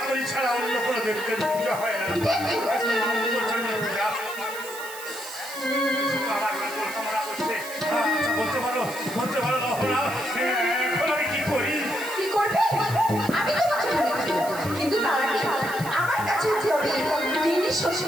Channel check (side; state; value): right; noise; hiss, 13 dB below the sound